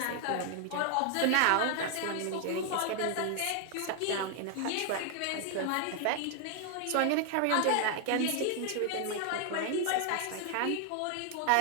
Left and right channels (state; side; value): different; both; correlation 0.00